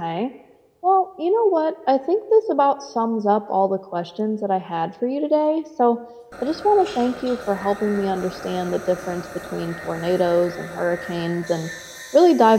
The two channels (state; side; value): identical; both; correlation 1.00